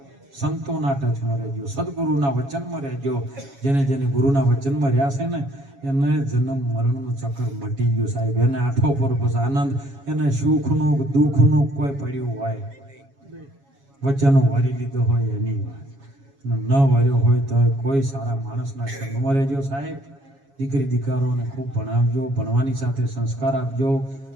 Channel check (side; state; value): left; late; 7.2 ms